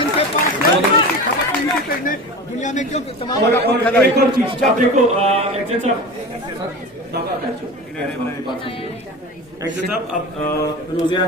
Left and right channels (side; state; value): both; normal; correlation 0.31